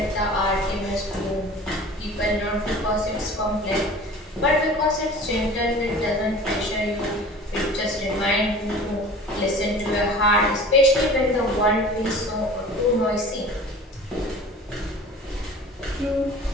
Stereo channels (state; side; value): normal; both; correlation 0.42